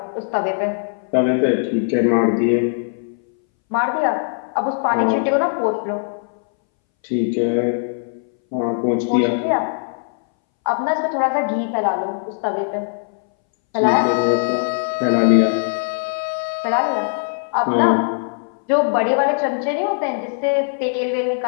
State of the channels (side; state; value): right; silent; 63 dB below the other